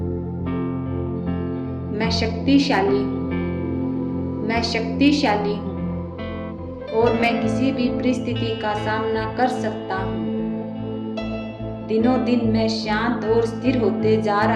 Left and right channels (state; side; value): identical; both; correlation 1.00